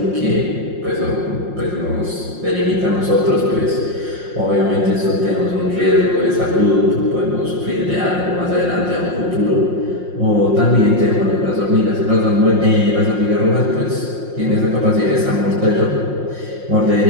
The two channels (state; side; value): late; left; 5.6 ms